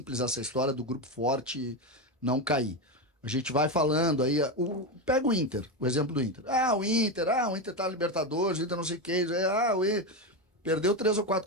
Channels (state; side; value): normal; both; correlation 0.13